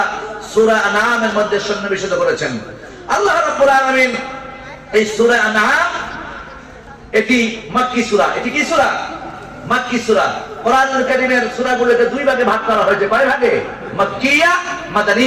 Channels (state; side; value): identical; both; correlation 1.00